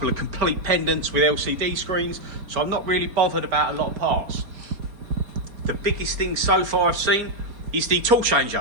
of complete pendants with LCD screens, so I'm not really bothered about a lot of parts. The biggest thing so far I've seen is the tool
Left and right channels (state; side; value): late; left; 4.3 ms